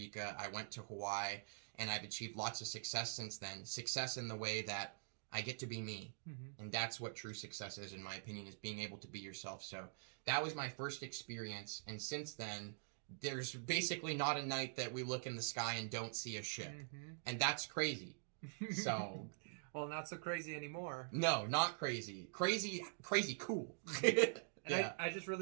I went to Hawaii, and I've achieved lots of success since then. Success in the way that I get to be me. And that's what true success is, in my opinion, is being able to be yourself. So that was my first experience, and since then, there's basically not a night that we look in the sky and don't see a ship. And that's crazy. So, well, not so crazy anymore. No, not crazy. Crazy cool. And I just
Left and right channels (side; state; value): left; silent; digital silence